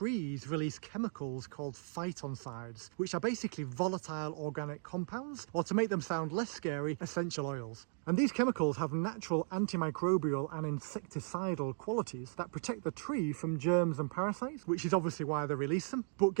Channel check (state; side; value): silent; left; 53 dB below the other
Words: release chemicals called phytoncides, which are basically volatile organic compounds, or to make them sound less scary, essential oils. And these chemicals have natural antimicrobial and insecticidal qualities that protect the tree from germs and parasites, which is obviously why they release them. But